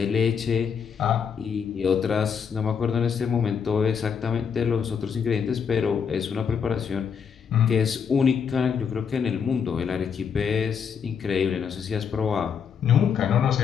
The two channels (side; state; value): right; quieter; 6.9 dB